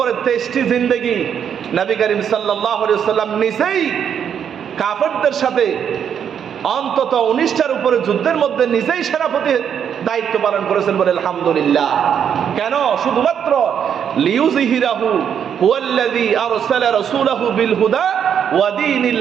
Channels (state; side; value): quieter; left; 8.3 dB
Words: 23টি জিন্দেগি নবী করিম সাল্লাল্লাহু আলাইহি ওয়াসাল্লাম নিজেই কাফেরদের সাথে অন্তত 19টার উপরে যুদ্ধের মধ্যে নিজেই সেনাপতি দায়িত্ব পালন করেছেন, বলে আলহামদুলিল্লাহ। কেন? শুধুমাত্র লিইউযহিরাহু হুয়াল্লাযী আরসালা রাসূলাহু বিল হুদা ওয়া